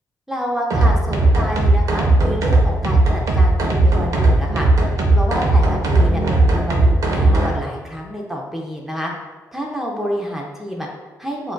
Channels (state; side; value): normal; both; correlation 0.80